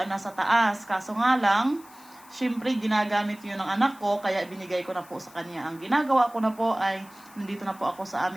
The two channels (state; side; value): noise; left; hiss, 24 dB below the sound